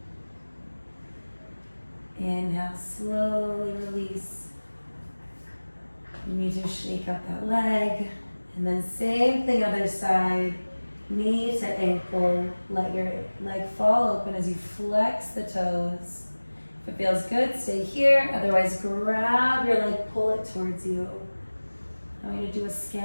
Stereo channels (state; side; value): inverted; both; correlation -1.00